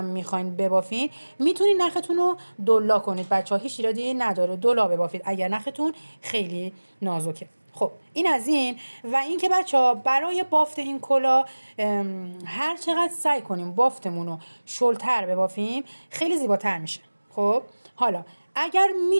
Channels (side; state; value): both; inverted; correlation -1.00